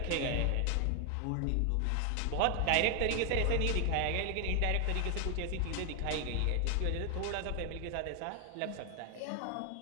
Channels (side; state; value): both; different; correlation 0.00